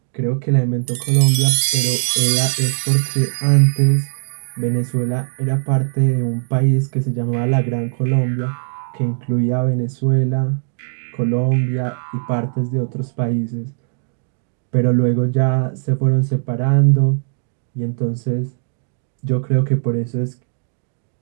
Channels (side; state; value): left; silent; digital silence